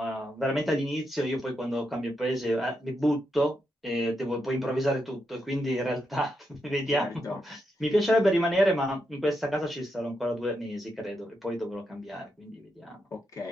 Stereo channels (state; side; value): normal; both; correlation 0.83